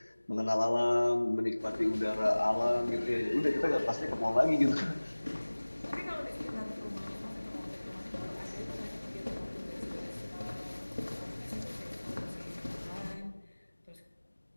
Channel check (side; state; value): both; inverted; correlation -1.00